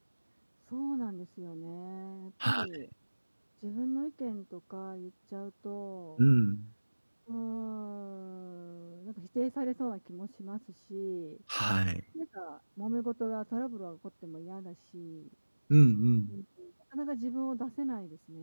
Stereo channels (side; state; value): both; inverted; correlation -1.00